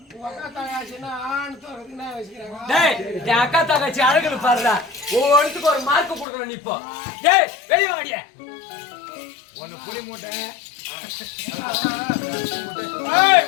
என் அக்கா தங்கச்சி அழகு பாருடா, ஒவ்வொருத்துக்கு ஒரு மார்க் கொடுக்கணும். இப்போ டேய் வெளியே வாடிய ஒன்னு புளி மூட்டை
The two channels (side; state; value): right; drops out; at 6.2 s